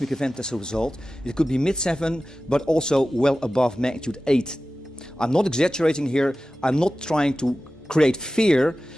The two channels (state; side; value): normal; both; correlation 0.95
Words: event as a result. It could be mid-7, but also well above magnitude 8. I'm not exaggerating here. I'm not trying to create fear.